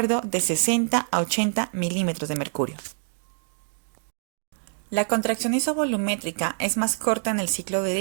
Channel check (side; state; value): left; silent; digital silence